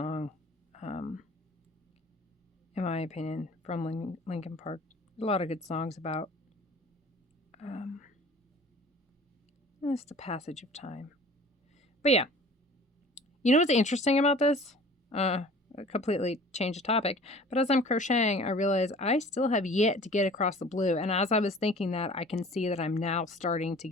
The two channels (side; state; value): both; normal; correlation 0.46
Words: in my opinion, from Linkin Park. A lot of good songs about it's the passage of time. But yeah, you know what's interesting about this? Completely change the topic. But as I'm crocheting, I realize I still have yet to get across the blue. And as I was thinking that, I can see that I'm now starting to